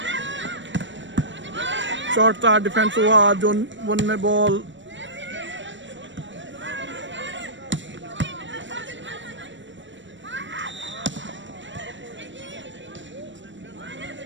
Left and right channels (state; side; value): late; left; 0.54 ms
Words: शॉट था, डिफेंस हुआ, जोन 1 में बॉल।